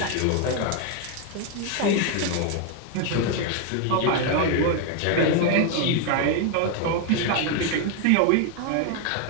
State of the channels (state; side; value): different; both; correlation 0.01